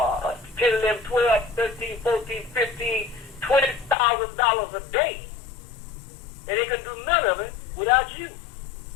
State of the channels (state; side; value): drops out; right; at 4.0 s